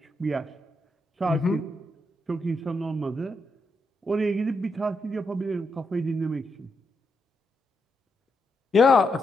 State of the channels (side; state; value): both; normal; correlation 0.82